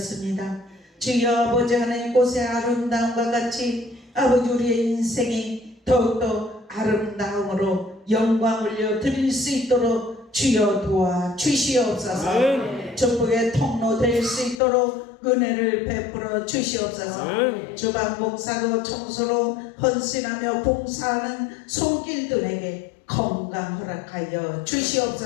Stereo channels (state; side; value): drops out; right; at 14.6 s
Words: 주여 아버지 하나님 꽃의 아름다움과 같이 아버지 우리의 인생이 더욱더 아름다움으로 영광 올려드릴 수 있도록 주여 도와 주시옵소서. 축복의 통로 될 수 있도록 은혜를 베풀어 주시옵소서. 주방 목사로 청소로 헌신하며 봉사하는 손길들에게 건강 허락하여